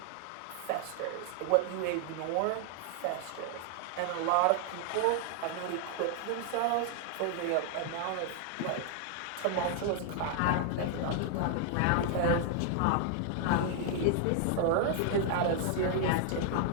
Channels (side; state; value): both; different; correlation 0.00